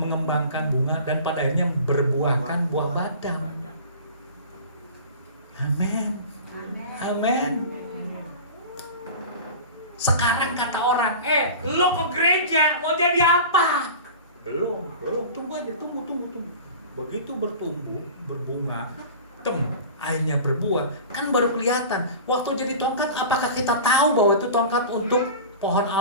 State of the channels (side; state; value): both; inverted; correlation -0.36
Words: bunga dan pada akhirnya berbuahkan buah badang. Amin. Amin. Sekarang kata orang, lo ke gereja mau jadi apa? Belum, tunggu aja, tunggu. Begitu bertumbuh, berbunga, akhirnya berbuah, kan baru kelihatan. Waktu jadi tongkat, apakah kita tahu bahwa itu tongkat untuk pohon